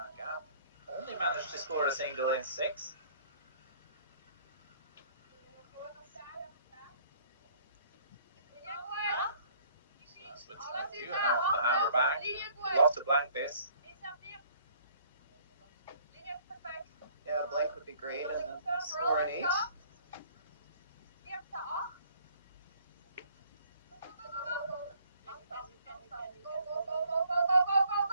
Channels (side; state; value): both; inverted; correlation -0.58